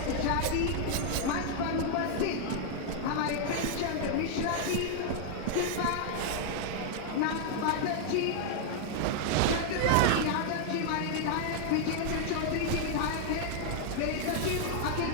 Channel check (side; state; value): both; different; correlation 0.00